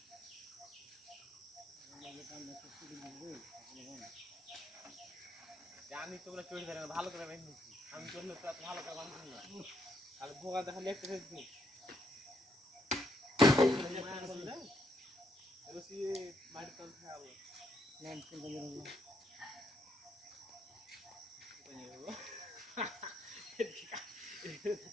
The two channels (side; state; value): both; normal; correlation 0.75